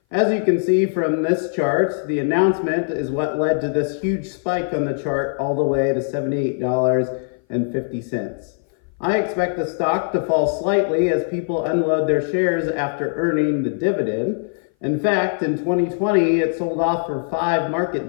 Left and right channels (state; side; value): silent; right; 59 dB below the other